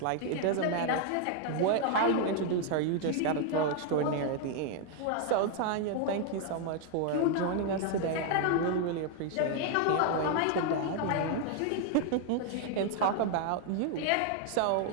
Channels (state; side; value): different; both; correlation 0.00